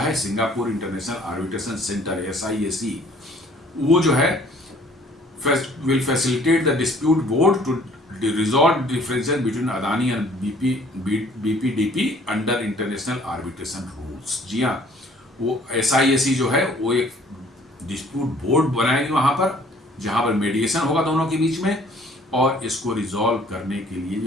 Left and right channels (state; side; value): normal; both; correlation 0.56